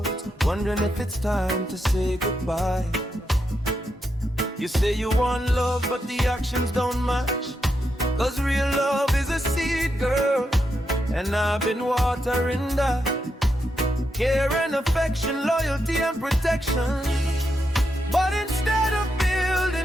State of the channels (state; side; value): normal; both; correlation 0.83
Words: wondering if it's time to say goodbye. You say you want love, but the actions don't match. 'Cause real love is a seed, girl, and I've been watering that. Care and affection, loyalty and protection. But instead of